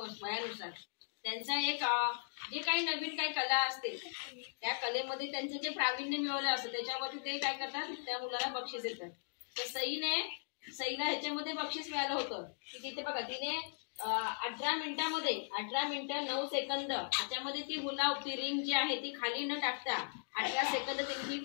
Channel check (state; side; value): silent; right; digital silence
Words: त्यांचा एक जे काही नवीन काही कला असते त्या कलेमध्ये त्यांचं जे प्रावीण्य मिळवलं असतं त्याच्यावरती ते काय करतात, त्या मुलाला बक्षीस देतात. तर सईला ह्याच्यामध्ये बक्षीस मिळालं होतं की तिथे बघा तिने 18 मिनिटं 9 सेकंद ह्याच्यामध्ये ती हुला हुप रिंग जी आहे ती खाली न टाकता 18 सेकंद तिने